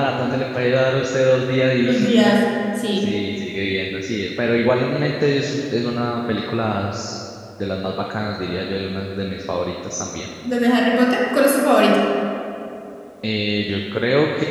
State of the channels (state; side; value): identical; both; correlation 1.00